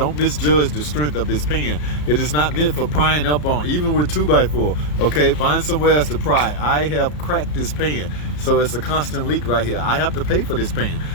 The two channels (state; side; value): late; right; 34 ms